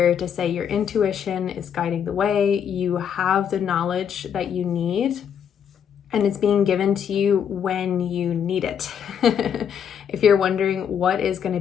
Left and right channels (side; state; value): right; quieter; 8.2 dB